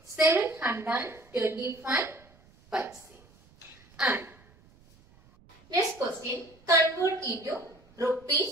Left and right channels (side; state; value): right; noise; rumble, 28 dB below the sound